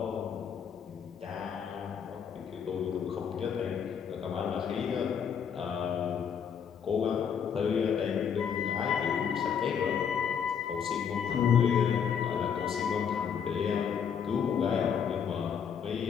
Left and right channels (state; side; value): quieter; right; 7.5 dB